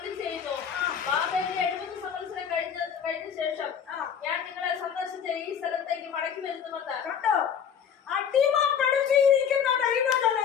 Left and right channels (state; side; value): quieter; right; 7.8 dB